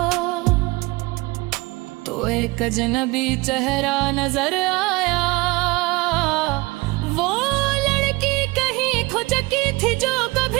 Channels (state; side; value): quieter; left; 23.2 dB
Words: तो एक अजनबी चेहरा नजर आया। वो लड़की कहीं खो चुकी थी जो